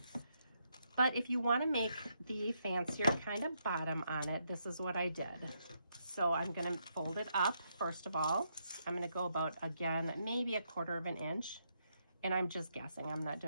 But if you want to make the fancier kind of bottom on it, this is what I did. So I'm going to fold it up, first of all. I'm going to go about, again, maybe 1/4 of an inch. And I'm just guessing. I'm not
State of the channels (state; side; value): inverted; both; correlation -0.78